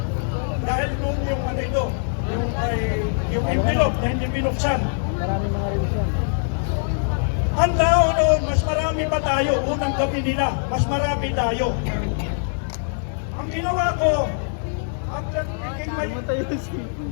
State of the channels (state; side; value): silent; right; digital silence